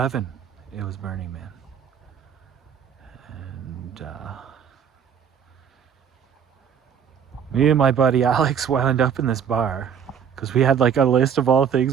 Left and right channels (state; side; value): quieter; left; 7.9 dB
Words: it was Burning Man. And me and my buddy Alex wound up in this bar because we had like a list of all things